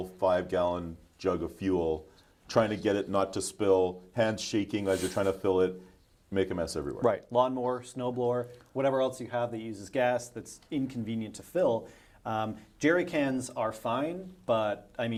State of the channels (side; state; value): both; identical; correlation 1.00